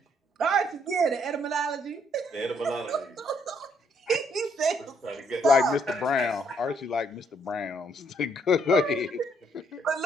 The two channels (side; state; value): both; normal; correlation 0.70